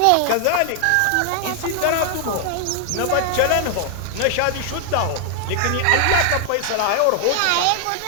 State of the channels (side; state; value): both; different; correlation 0.00